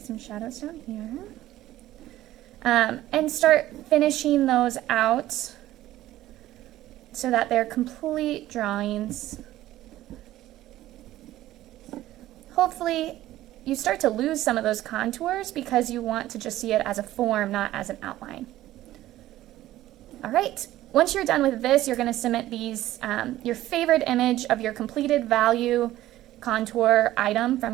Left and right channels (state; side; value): quieter; left; 14.7 dB